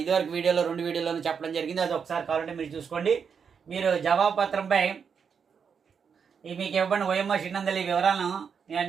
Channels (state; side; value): quieter; left; 6.6 dB